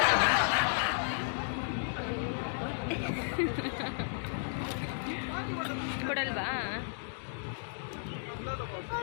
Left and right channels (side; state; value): right; silent; digital silence